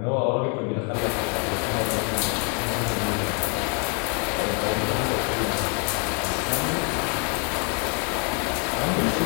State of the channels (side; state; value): right; quieter; 36.8 dB